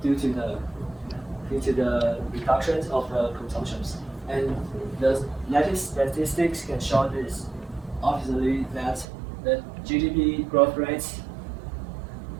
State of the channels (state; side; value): drops out; left; at 9.1 s